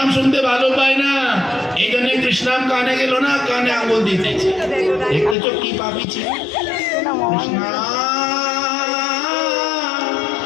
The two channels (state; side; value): drops out; right; at 5.4 s